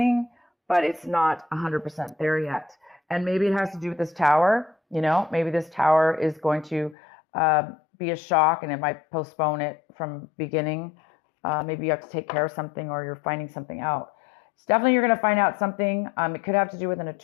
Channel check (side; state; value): right; drops out; at 7.0 s